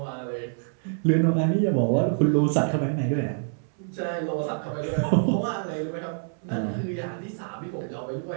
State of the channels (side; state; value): left; silent; 61 dB below the other